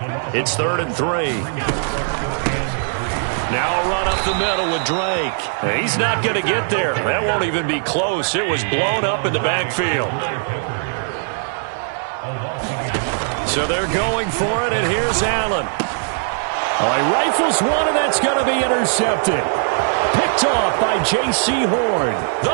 It's 3rd and 3. Now a run up the middle with Drake. He's not going to get there. That won't even be close. It was blown up in the backfield. So they're going for it, and here's Allen. All right, rifles one, and that's going to be intercepted. Picked off by J.C. Horn.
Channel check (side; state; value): left; silent; 61 dB below the other